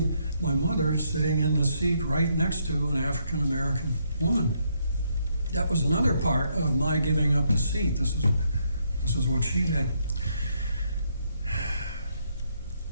my mother sitting in the seat right next to an African-American woman. That was another part of my giving up the seat. This is what she did.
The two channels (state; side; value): inverted; both; correlation -0.75